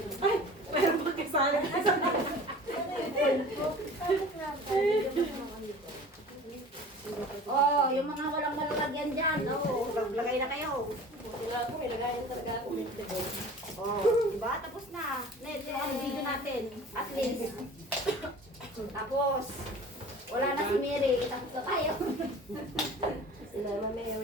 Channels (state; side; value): normal; both; correlation 0.42